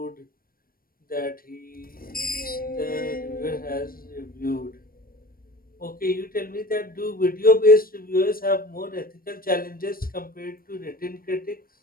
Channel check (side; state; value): right; late; 0.42 ms